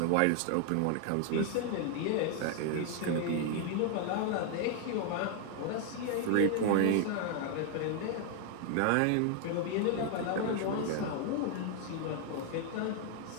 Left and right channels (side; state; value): both; different; correlation 0.00